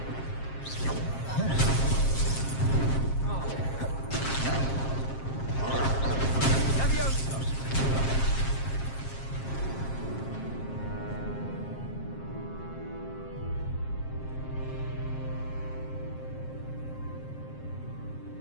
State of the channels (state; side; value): late; right; 7.5 ms